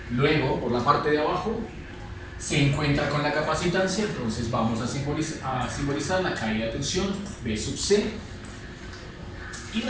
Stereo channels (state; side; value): identical; both; correlation 1.00